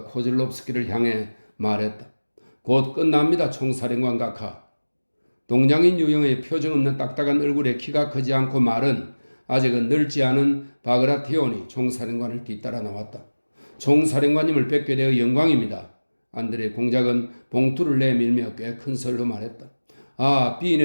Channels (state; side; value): inverted; both; correlation -1.00